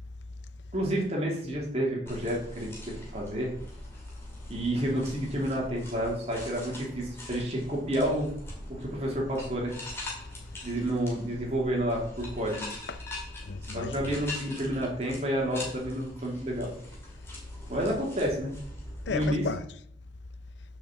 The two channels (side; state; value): both; normal; correlation 0.57